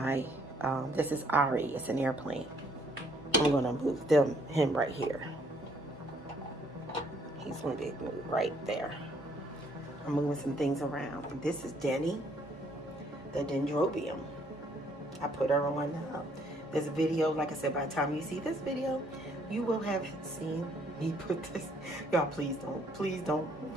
this is Ari. It's an airplane. I'm going to move him right here. He's going to be moved right there. I'm moving some things around. This is Denny, the Dendrobium. I put her on this video. Like I said, by the time you see this video, you will have seen me put this. Y'all, please don't. Please don't.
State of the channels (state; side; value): normal; both; correlation 0.66